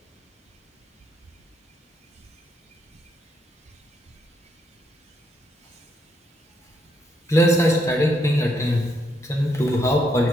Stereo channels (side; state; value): both; normal; correlation 0.76